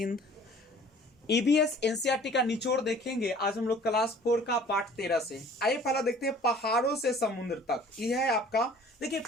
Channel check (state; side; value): normal; both; correlation 0.50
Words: EBS NCERT का निचोड़ देखेंगे आज हम लोग क्लास 4 का पाठ 13 से। आइए पहला देखते हैं पहाड़ों से समुद्र तक। यह है आपका, देखिए